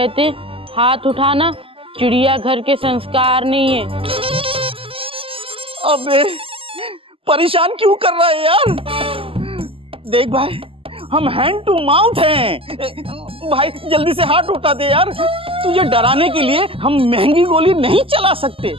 हाथ उठाना चिड़ियाघर के संस्कार नहीं है। अबे परेशान क्यों कर रहा है यार? देख भाई, हम हैंड टू माउथ हैं। भाई जल्दी से हाथ उठा दे यार, तुझे डराने के लिए हम महंगी गोली नहीं चला सकते।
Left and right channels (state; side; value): late; left; 0.26 ms